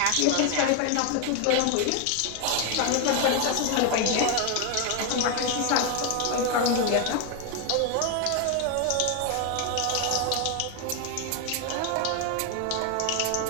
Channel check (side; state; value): both; different; correlation 0.01